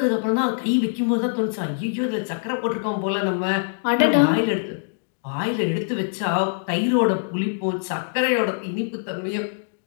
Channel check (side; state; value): right; silent; digital silence